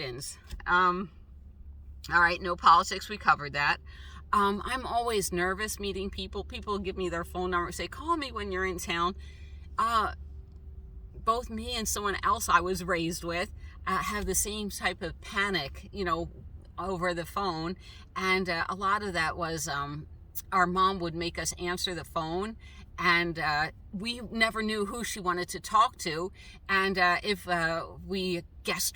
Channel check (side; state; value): both; identical; correlation 1.00